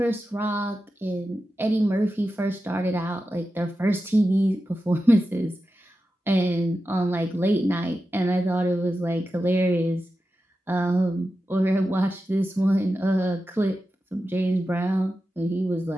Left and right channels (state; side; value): normal; both; correlation 0.91